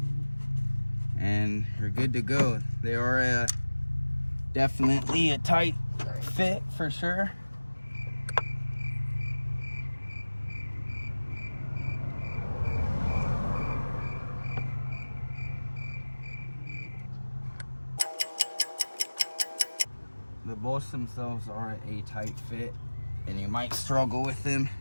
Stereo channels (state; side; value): inverted; both; correlation -1.00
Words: and you're good to go. They are definitely a tight fit for sure. The bolts themselves are a tight fit, and you might struggle with them,